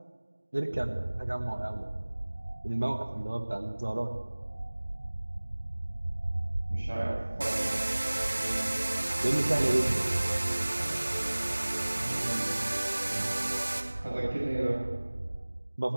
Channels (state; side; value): inverted; both; correlation -1.00